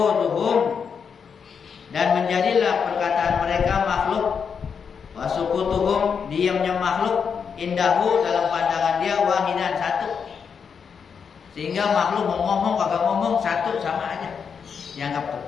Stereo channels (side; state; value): right; quieter; 6.5 dB